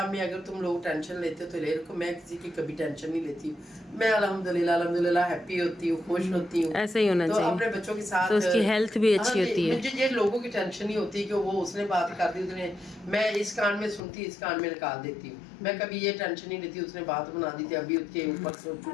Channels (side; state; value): right; drops out; at 14.0 s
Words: में। अगर तुम लोग टेंशन लेते हो तो ले रखो, मैं किसी की कभी टेंशन नहीं लेती हूँ। मैं अल्हम्दुलिल्लाह हैप्पी होती हूँ, खुश होती हूँ। ऐसे ही होना चाहिए, अपने बच्चों के साथ तो उसकी हेल्थ भी अच्छी होती है। मुझे ये लोगों की टेंशन नहीं होती कि वो उसने बात कर दी, उसने, मैं इस कान में सुनती इस कान में निकाल देती हूँ। मैं कभी ये टेंशन नहीं लेती उसने बात बना दी थी, अभी उसके ऊपर